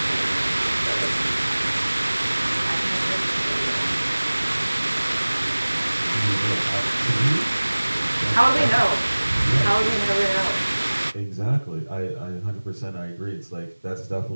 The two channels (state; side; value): inverted; both; correlation -1.00